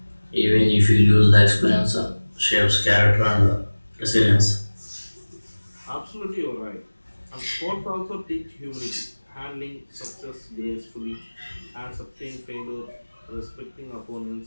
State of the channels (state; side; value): inverted; both; correlation -1.00